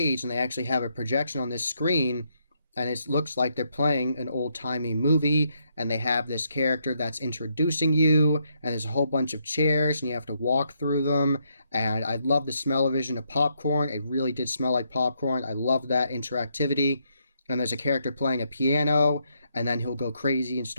and they actually have a projection on this screen, and it looks like they're playing an old-timey movie, and they have this character that's introducing you, and there's a whole bunch of chairs and you have to walk through them. And I love the smell-o-vision of popcorn. It really did smell like popcorn. I love that interactivity. And there's a character playing a piano, and then he'll go crazy and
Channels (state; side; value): inverted; both; correlation -0.77